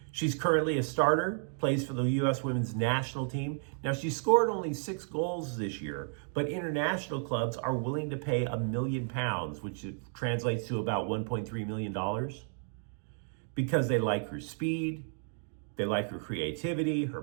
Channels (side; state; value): left; silent; 56 dB below the other